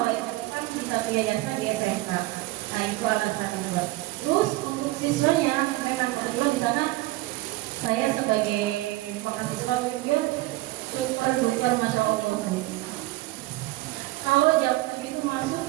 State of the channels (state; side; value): quieter; left; 19.0 dB